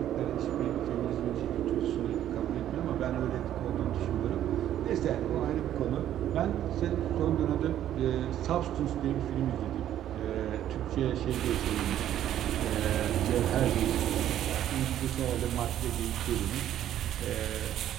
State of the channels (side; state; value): left; quieter; 11.5 dB